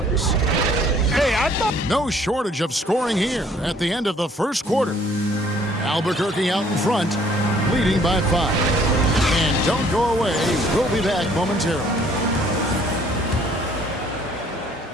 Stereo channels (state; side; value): normal; both; correlation 0.59